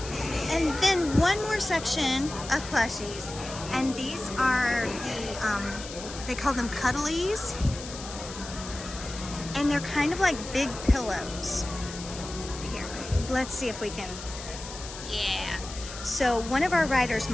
And then one more section of plushies, and these are the, they call them Cuddlies, and they're kind of like big pillows. Here, let's see if we can, yeah. So one of our writers,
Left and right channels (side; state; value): left; noise; hiss, 12 dB below the sound